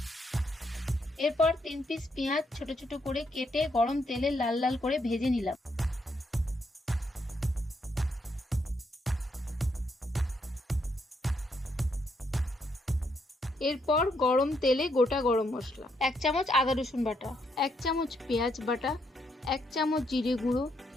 এরপর 3 পিস পেঁয়াজ ছোট ছোট করে কেটে গরম তেলে লাল লাল করে ভেজে নিলাম। এরপর গরম তেলে গোটা গরম মশলা, 1 চামচ আদা রসুন বাটা, 1 চামচ পেঁয়াজ বাটা, 1 চামচ জিরে গুঁড়ো,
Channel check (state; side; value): normal; both; correlation 0.76